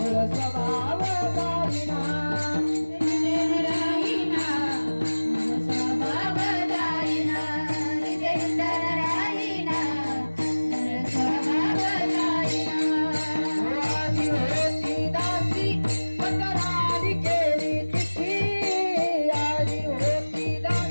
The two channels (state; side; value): inverted; both; correlation -1.00